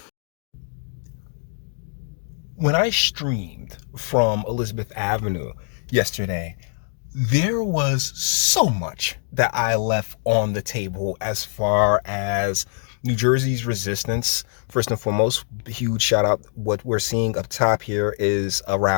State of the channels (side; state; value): right; silent; 60 dB below the other